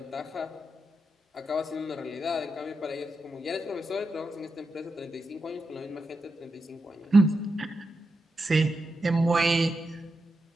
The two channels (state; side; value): normal; both; correlation 0.87